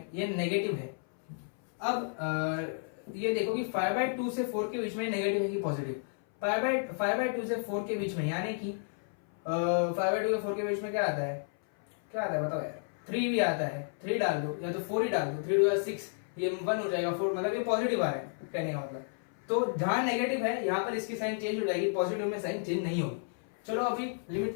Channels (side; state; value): right; silent; 57 dB below the other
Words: ये नेगेटिव है। अब ये देखो कि 5/2 से 4 के बीच में नेगेटिव है कि पॉजिटिव। 5/2 से 4 के बीच में, यानी कि 5/2 से 4 के बीच में क्या आता है बताओ यार, 3 भी आता है, 3 डाल दो या तो 4 ही डाल दो, 3 2 6, ये 1 हो जाएगा, 4 मतलब ये पॉजिटिव आ रहा है कहने का मतलब। तो जहां नेगेटिव है यहाँ पर इसकी साइन चेंज हो जाएगी, पॉजिटिव में साइन चेंज नहीं होगी। चलो अभी